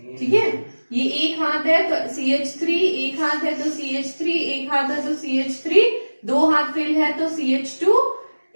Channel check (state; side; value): inverted; both; correlation -1.00